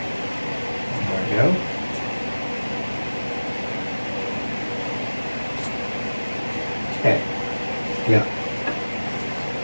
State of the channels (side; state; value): both; inverted; correlation -1.00